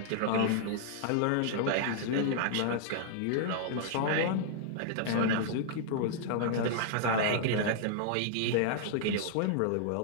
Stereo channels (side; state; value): both; different; correlation -0.01